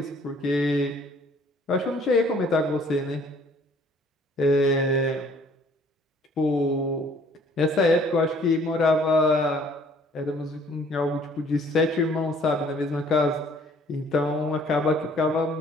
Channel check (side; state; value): both; normal; correlation 0.58